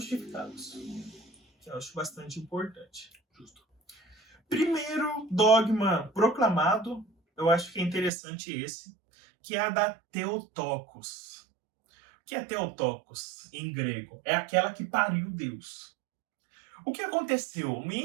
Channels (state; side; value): drops out; left; at 8.1 s